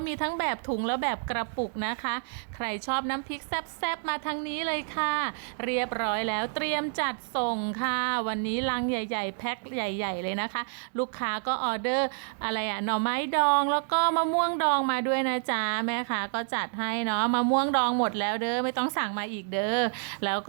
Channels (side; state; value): left; silent; digital silence